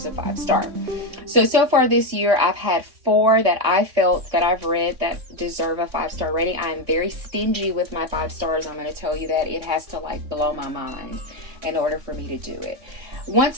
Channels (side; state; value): left; late; 3.6 ms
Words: a 5-star. So far this year, I've had 4 that I felt that I've read that deserve a 5-star rating. I am very stingy with my 5 stars. I'm going to tell you that. It has to like blow my mind in order for me to do it.